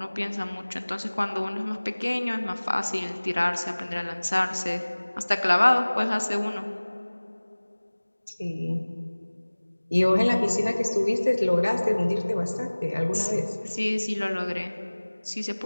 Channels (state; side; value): inverted; both; correlation -1.00